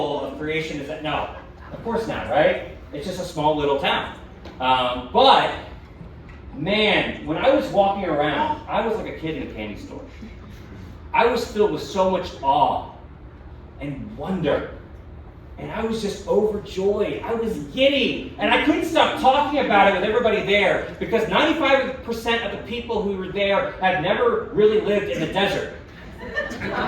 of creation is at. No, of course not, right? It's just a small little town. But man, when I was walking around, I was like a kid in a candy store. I was filled with so much awe and wonder. And I was just overjoyed. I was giddy. And I couldn't stop talking about it with everybody there because 95% of the people who were there had never really lived in the desert. So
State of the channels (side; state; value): both; identical; correlation 1.00